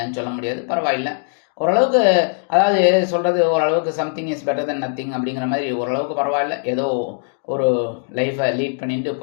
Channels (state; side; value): silent; right; digital silence